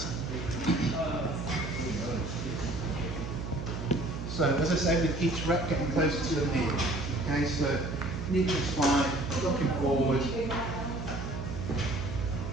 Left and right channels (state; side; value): noise; right; hum, 7 dB below the sound